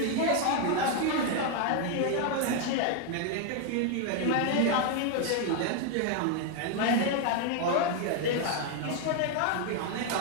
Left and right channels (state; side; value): different; both; correlation 0.01